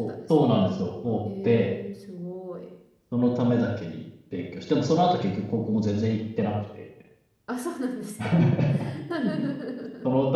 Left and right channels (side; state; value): both; identical; correlation 1.00